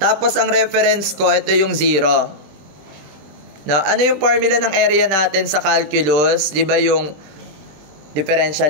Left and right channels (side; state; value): left; late; 20 ms